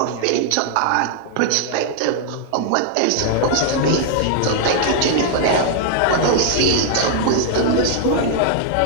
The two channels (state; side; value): different; both; correlation -0.01